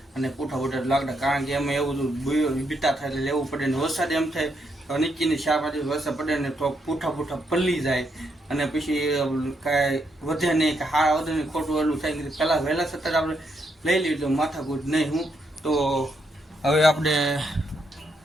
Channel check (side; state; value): both; normal; correlation 0.78